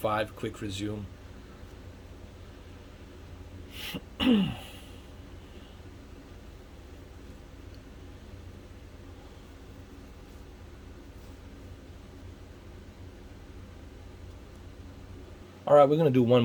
quick resume. All right, we're going to do one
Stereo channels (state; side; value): identical; both; correlation 1.00